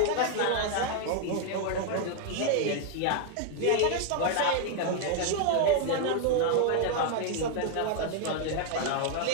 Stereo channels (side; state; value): both; different; correlation 0.00